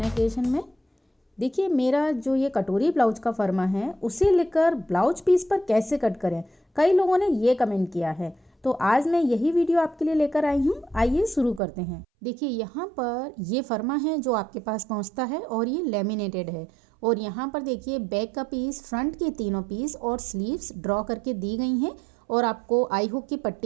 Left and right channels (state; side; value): drops out; left; at 11.6 s